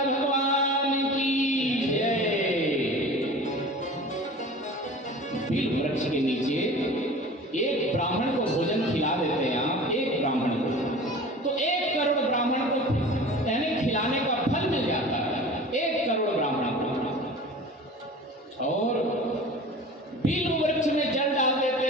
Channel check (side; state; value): both; normal; correlation 0.39